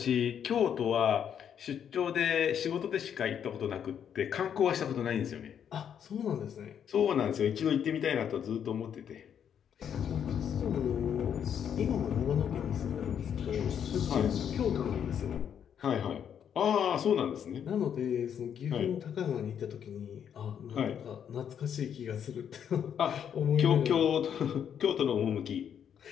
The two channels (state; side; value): quieter; right; 8.5 dB